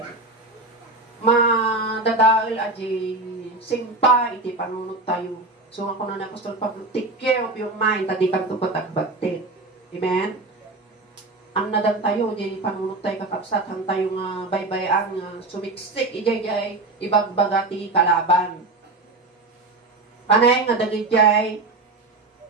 Madadal aji simpa, iti panunod tayo. So ako na Apostol Pablo, take care of your mind, tadi kang tupatagbagtit. Amen? Ang nadan tayo, di panunod tayo kakabsat, ang tayo nga baybayang sumiksik, ijay ibagbagati kalaban. Panay nga dagijay,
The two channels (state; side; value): quieter; left; 3.1 dB